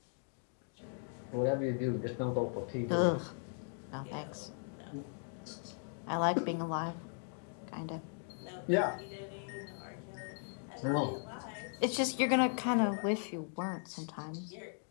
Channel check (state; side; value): silent; right; 52 dB below the other